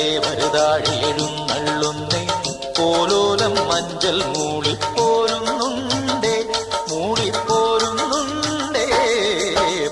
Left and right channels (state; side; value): identical; both; correlation 1.00